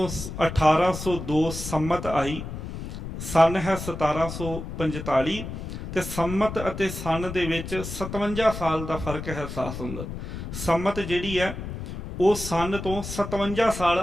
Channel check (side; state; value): left; noise; rumble, 8 dB below the sound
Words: 1802 ਸੰਮਤ ਆਈ, ਸਨ ਹੈ 1745, ਤੇ ਸੰਮਤ ਅਤੇ ਸਨ ਦੇ ਵਿੱਚ 57 ਸਾਲ ਦਾ ਫਰਕ ਹੈ। ਸਾਧ ਸੰਗਤ, ਸੰਮਤ ਜਿਹੜੀ ਹੈ ਉਹ ਸਨ ਤੋਂ 57